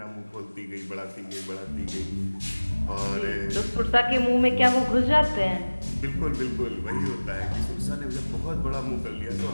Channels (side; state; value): both; inverted; correlation -1.00